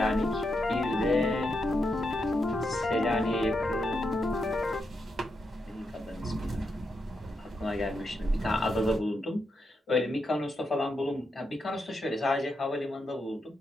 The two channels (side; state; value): both; normal; correlation 0.83